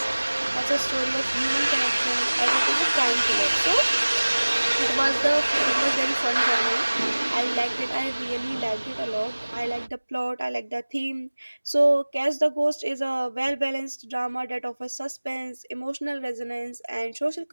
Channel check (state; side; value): inverted; both; correlation -1.00